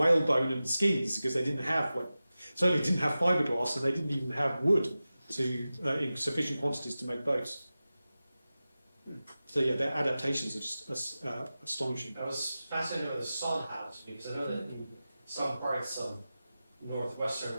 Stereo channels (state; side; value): inverted; both; correlation -0.95